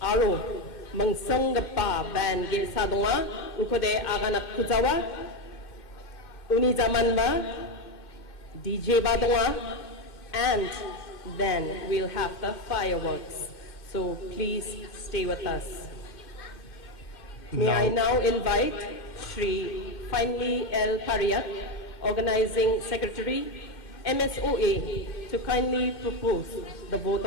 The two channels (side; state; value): right; late; 2.1 ms